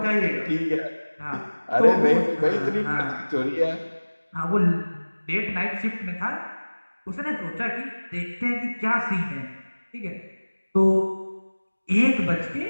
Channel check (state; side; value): inverted; both; correlation -1.00